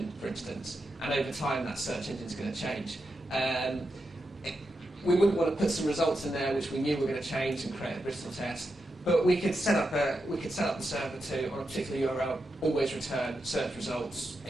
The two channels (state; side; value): normal; both; correlation 0.87